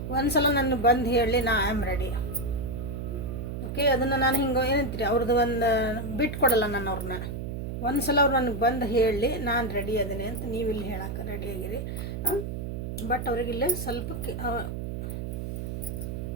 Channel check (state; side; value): noise; right; hum, 5 dB below the sound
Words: ಒಂದು ಸಲ ನನ್ನ ಬಂದು ಹೇಳಲಿ, ನಾ ಐ ಆಮ್ ರೆಡಿ, ಓಕೆ. ಅದನ್ನು ನಾನು ಹಿಂಗೆ ಏನಂತೀರಿ, ಅವ್ರದ್ದು ಒಂದು ಬಿಟ್ಟು ಕೊಡಲ್ಲ ನಾನು ಅವ್ರನ್ನ. ಒಂದು ಸಲ ಅವ್ರು ನನಗೆ ಬಂದು ಹೇಳಲಿ, ನಾನು ರೆಡಿ ಅದೀನಿ ಅಂತ ನೀವು ಇಲ್ಲಿ ಹೇಳಕ್ಕೆ ರೆಡಿಯಾಗಿರಿ. ಬಟ್ ಅವ್ರಿಗಿಲ್ಲೇ ಸ್ವಲ್ಪ